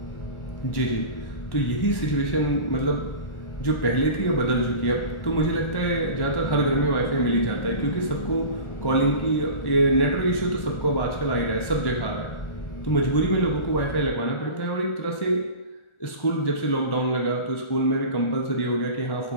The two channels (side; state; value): right; late; 1.4 ms